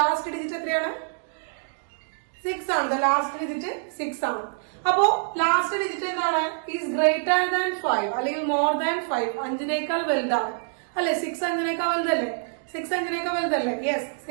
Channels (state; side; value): silent; left; digital silence